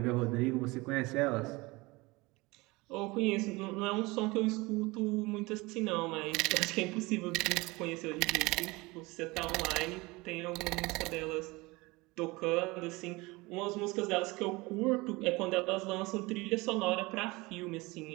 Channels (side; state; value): left; quieter; 23.2 dB